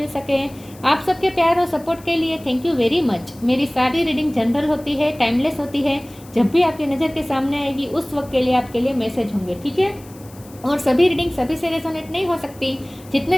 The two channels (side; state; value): left; noise; hiss, 23 dB below the sound